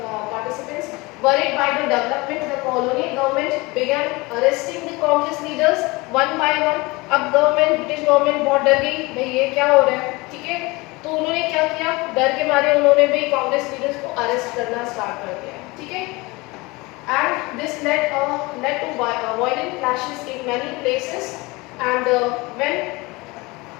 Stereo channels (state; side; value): quieter; right; 23.8 dB